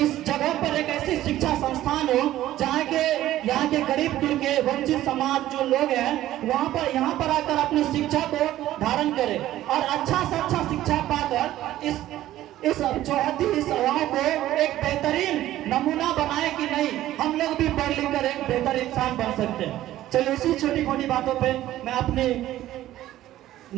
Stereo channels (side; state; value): left; quieter; 14.1 dB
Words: जगह पर एक ऐसी शिक्षा संस्थान हो जहाँ के यहाँ के गरीब कुल के वंचित समाज जो लोग हैं यहाँ पर आकर अपनी शिक्षा को धारण करें और अच्छा से अच्छा शिक्षा पाकर इस चौहद्दी इस गाँव को एक बेहतरीन नमूना बनाए कि नहीं हम लोग भी पढ़ लिख कर एक बेहतर इंसान बन सकते हैं। चलिए इसी छोटी मोटी बातों पे मैं अपनी